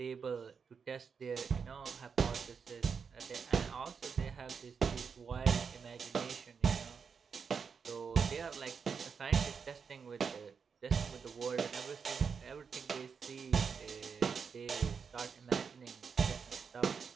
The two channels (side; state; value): left; quieter; 6.0 dB